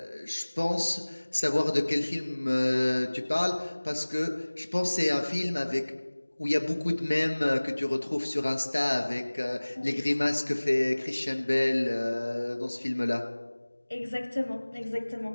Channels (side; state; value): both; inverted; correlation -1.00